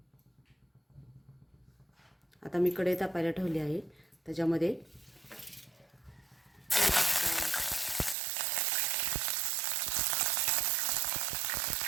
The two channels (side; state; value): left; drops out; at 8.2 s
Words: आता मी कढई तापायला ठेवली आहे. त्याच्यामध्ये